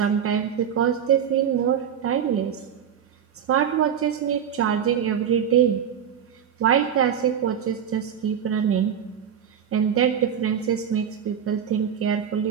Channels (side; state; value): left; quieter; 8.5 dB